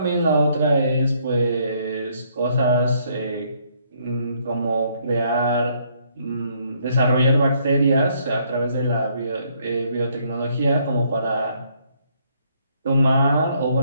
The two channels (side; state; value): both; inverted; correlation -0.68